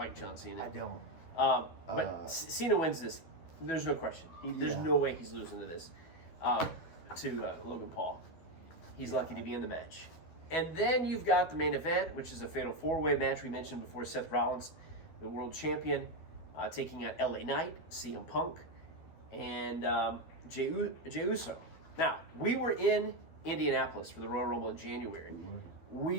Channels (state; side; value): late; right; 12 ms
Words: John Cena. I don't. But Cena wins this. There's no question. There's no way he's losing to this. To Logan Paul. He's lucky to be in the match. And then you've got the main event, which is a fatal 4-way match we mentioned before. Seth Rollins, the world champion, taking on LA Knight, CM Punk, and Jey Uso. Now, we were in Indianapolis for the Royal Rumble in January.